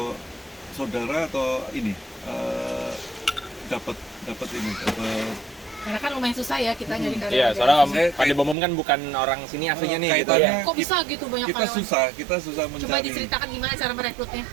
saudara atau ini dapat ini dapat Karena kan lumayan susah ya kita nyari karyawan. Iya, soalnya Om Saya- Padi Bomom kan bukan orang sini aslinya nih gitu kaitannya ya. Kok bisa gitu banyak kita karyawan? susah Coba mencari. diceritakan gimana cara merekrutnya.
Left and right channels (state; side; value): drops out; left; at 8.6 s